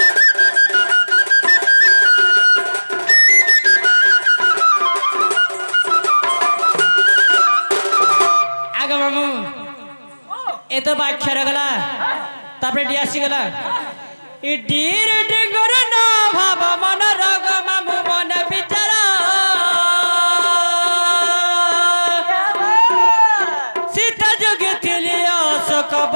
ए तो बाख्या रगला तापरे डियासी गला ई डीर डिंगर ना भाव मन रग मामू मन बिचारा सीता जोगी थिली अशोक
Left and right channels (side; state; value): both; inverted; correlation -1.00